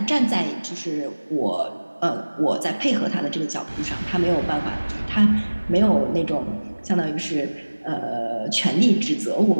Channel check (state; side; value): inverted; both; correlation -1.00